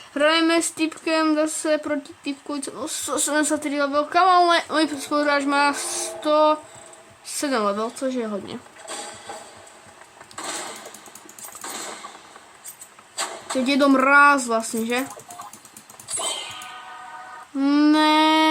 Hrajeme s typkem zase proti typku, no 173 level, kamo, můj spoluhráč má 107 level, což je hodně. Teď je mráz vlastně, že?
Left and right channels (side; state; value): both; identical; correlation 1.00